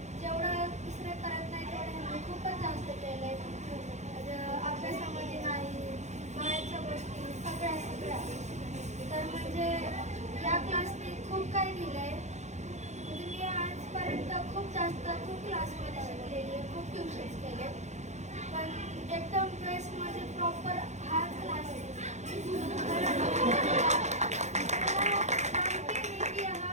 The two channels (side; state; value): left; late; 0.33 ms